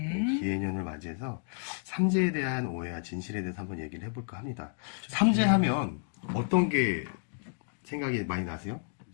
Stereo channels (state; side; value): silent; right; 57 dB below the other